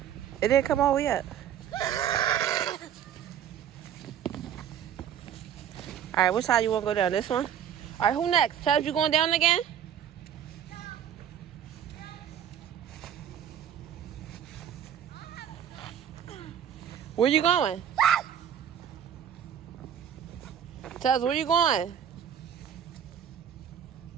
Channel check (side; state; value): left; quieter; 9.2 dB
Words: It didn't come all the way up. Alright, which side you want to go down? This one? Alright, who next? Chubbs, you going down again? Where you going? Chubbs, where you going?